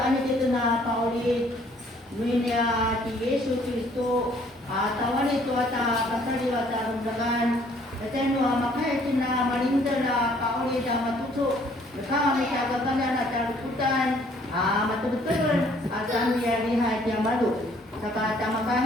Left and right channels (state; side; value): normal; both; correlation 0.61